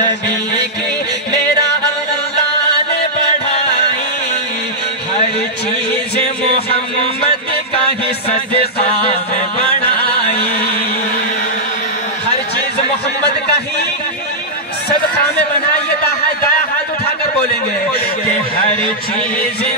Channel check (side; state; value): both; normal; correlation -0.09